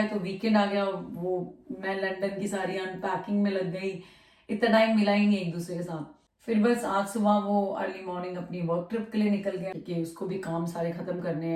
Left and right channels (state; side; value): identical; both; correlation 1.00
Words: तो वीकेंड आ गया, वो मैं लंदन की सारी अनपैकिंग में लग गई, इतना टाइम मिला ही नहीं एक दूसरे के साथ। फिर बस आज सुबह वो अर्ली मॉर्निंग अपनी वर्क ट्रिप के लिए निकल गया, क्योंकि उसको भी काम सारे खत्म करने